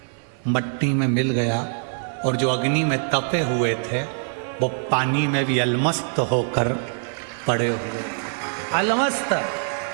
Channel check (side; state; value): left; silent; 55 dB below the other